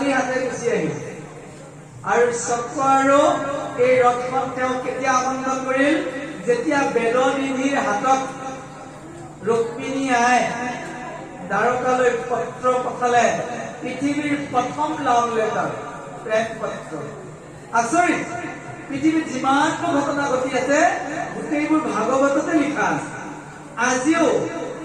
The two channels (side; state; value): both; identical; correlation 1.00